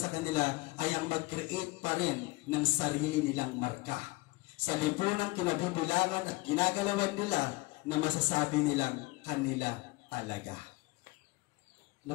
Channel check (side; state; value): right; quieter; 22.8 dB